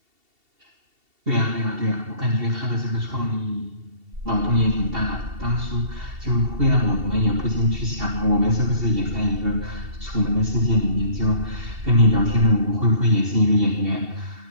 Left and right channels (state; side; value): late; left; 2.7 ms